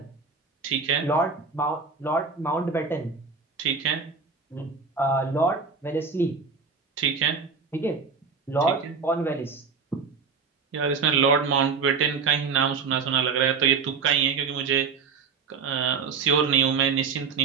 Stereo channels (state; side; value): quieter; left; 5.3 dB